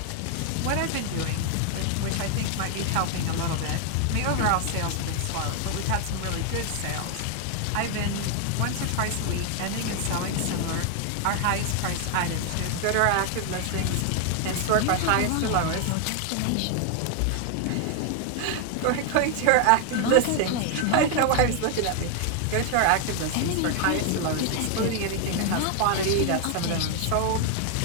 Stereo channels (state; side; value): different; both; correlation 0.00